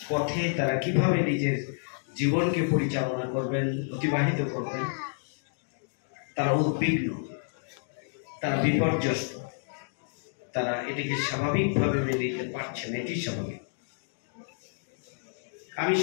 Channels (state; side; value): silent; right; digital silence